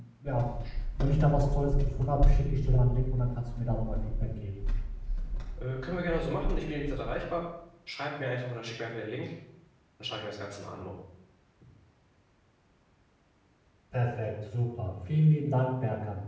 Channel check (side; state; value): both; identical; correlation 1.00